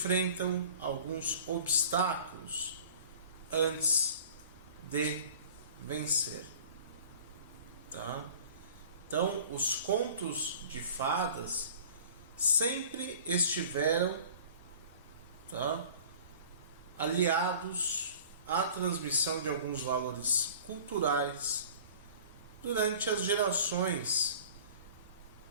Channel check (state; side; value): inverted; both; correlation -0.45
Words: alguns obstáculos antes de vencer, tá? Então, os contos de fadas sempre estiveram, tá, aliados à transmissão de alguns valores culturais durante as gerações